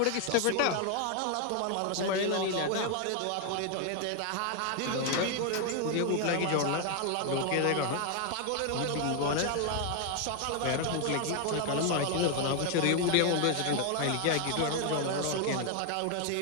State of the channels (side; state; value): both; different; correlation 0.00